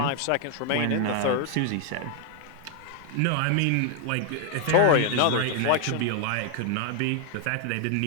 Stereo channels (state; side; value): different; both; correlation 0.00